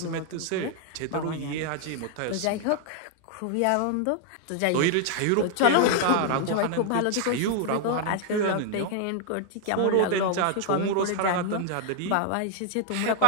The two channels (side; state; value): both; different; correlation 0.00